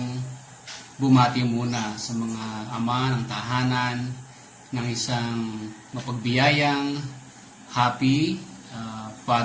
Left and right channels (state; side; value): identical; both; correlation 1.00